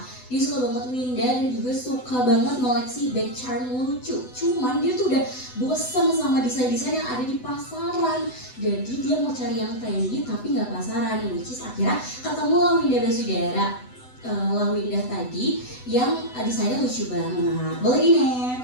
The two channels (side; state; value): right; late; 8.0 ms